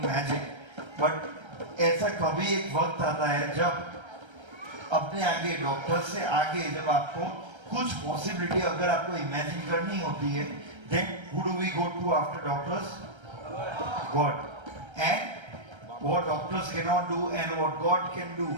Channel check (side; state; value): left; late; 1.3 ms